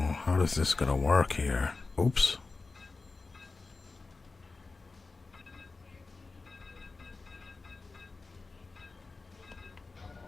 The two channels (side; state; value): right; quieter; 3.9 dB